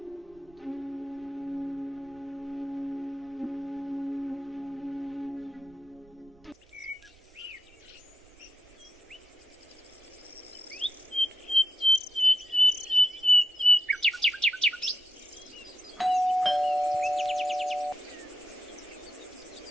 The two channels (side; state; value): right; noise; rumble, 28 dB below the sound